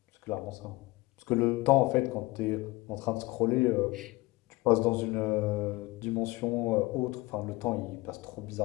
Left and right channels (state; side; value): quieter; right; 21.5 dB